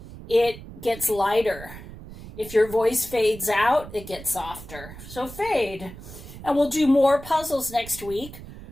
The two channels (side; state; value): right; noise; rumble, 15 dB below the sound